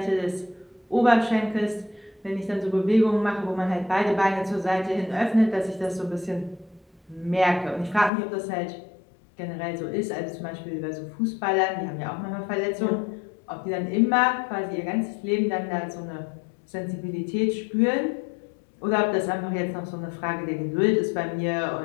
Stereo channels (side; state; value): right; drops out; at 8.1 s